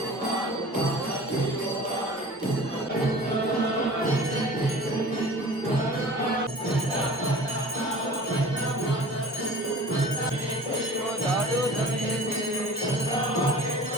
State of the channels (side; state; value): both; normal; correlation 0.42